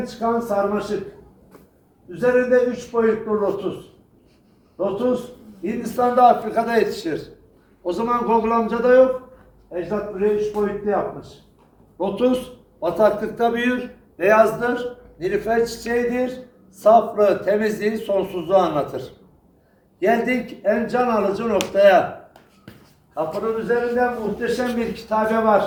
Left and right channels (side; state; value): both; identical; correlation 1.00